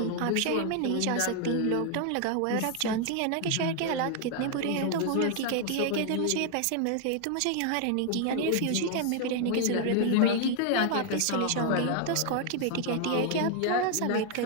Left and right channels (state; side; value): different; both; correlation 0.00